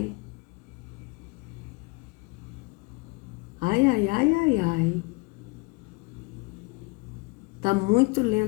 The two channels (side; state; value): right; quieter; 26.5 dB